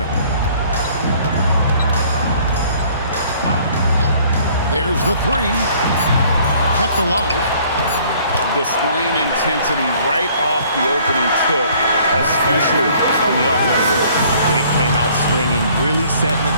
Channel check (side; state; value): both; inverted; correlation -0.57